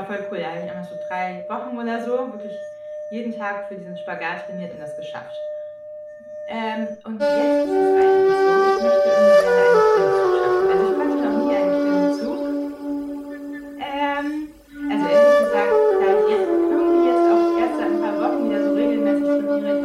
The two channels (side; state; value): both; identical; correlation 1.00